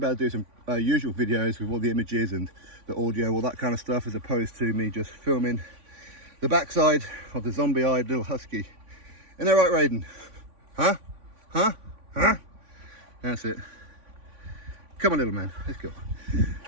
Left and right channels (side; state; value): left; late; 3.5 ms